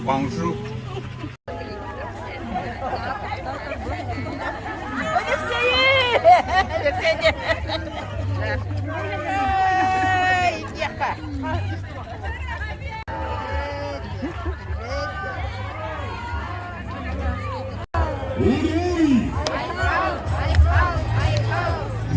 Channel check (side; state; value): both; identical; correlation 1.00